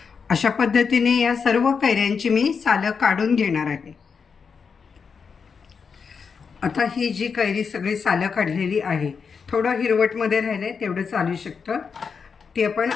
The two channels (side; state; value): right; quieter; 5.8 dB